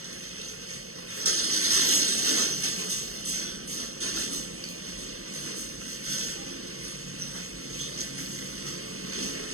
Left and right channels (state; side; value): late; left; 0.63 ms